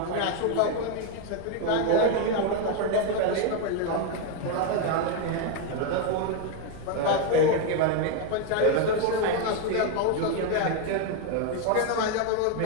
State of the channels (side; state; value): both; different; correlation 0.01